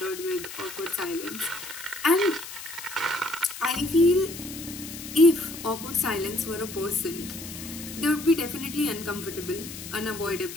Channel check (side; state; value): left; noise; hiss, 11 dB below the sound